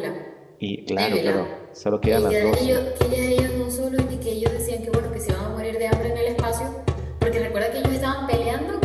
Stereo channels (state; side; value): identical; both; correlation 1.00